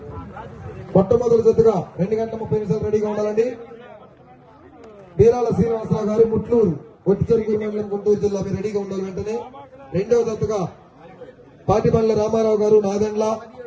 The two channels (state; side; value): identical; both; correlation 1.00